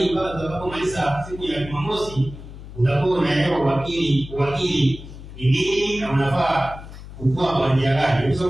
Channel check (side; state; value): left; noise; hum, 14 dB below the sound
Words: mpaka utakapomaliza siku ya Jumamosi, utakuwa unaelewa uwakili ni nini na unafaa kukua kwa njia gani.